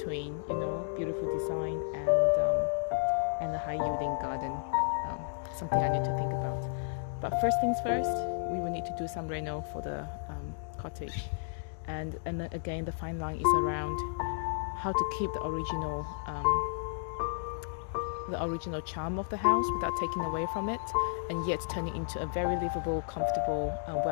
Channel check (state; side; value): silent; right; digital silence